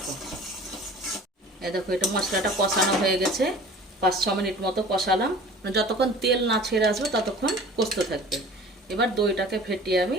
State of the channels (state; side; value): normal; both; correlation 0.44